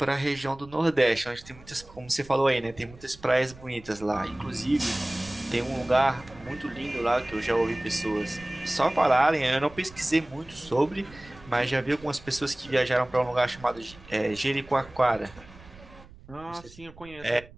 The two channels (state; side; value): noise; right; rumble, 21 dB below the sound